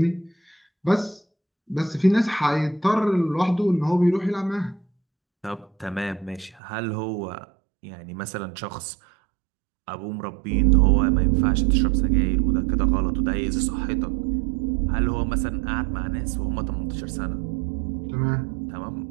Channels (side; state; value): left; drops out; at 6.6 s